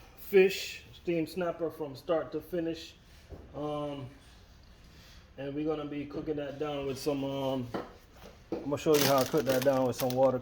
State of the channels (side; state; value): both; identical; correlation 1.00